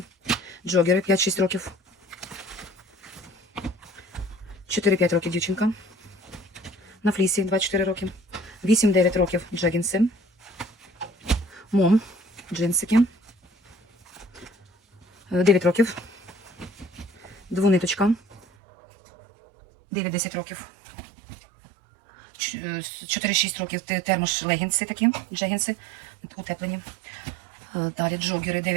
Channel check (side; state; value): left; drops out; at 18.4 s